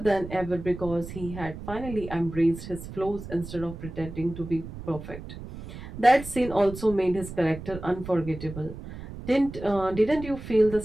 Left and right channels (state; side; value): noise; right; rumble, 11 dB below the sound